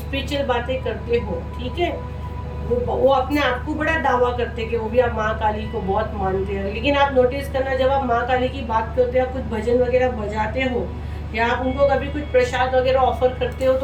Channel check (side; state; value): both; identical; correlation 1.00